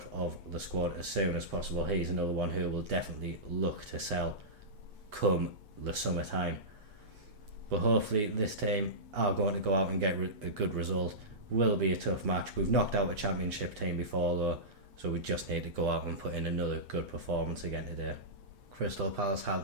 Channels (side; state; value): left; late; 8.3 ms